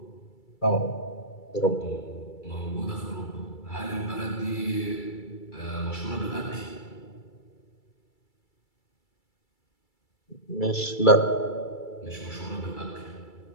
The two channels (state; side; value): late; right; 2.3 ms